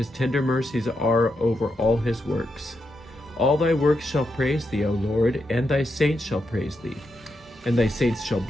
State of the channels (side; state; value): both; normal; correlation 0.84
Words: tender mercies are over all his works. All thy works shall praise thee, O Lord, and thy saints shall praise thee, and thy saints shall